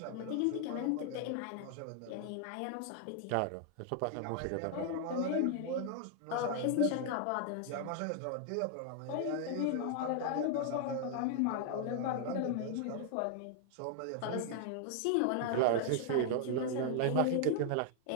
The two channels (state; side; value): different; both; correlation 0.00